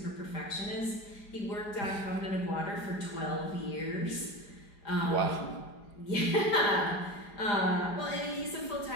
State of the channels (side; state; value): right; late; 4.9 ms